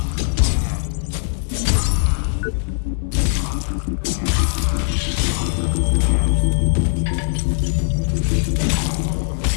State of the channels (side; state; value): right; silent; digital silence